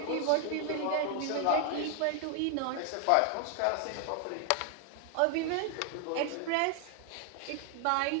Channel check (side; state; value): both; different; correlation 0.00